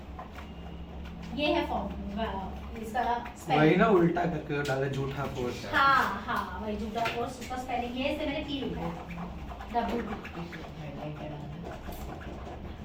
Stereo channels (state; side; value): identical; both; correlation 1.00